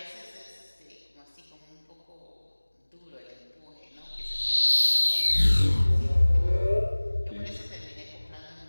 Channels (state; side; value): inverted; both; correlation -1.00